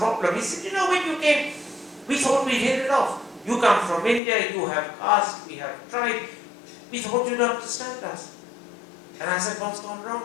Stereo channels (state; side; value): drops out; right; at 4.2 s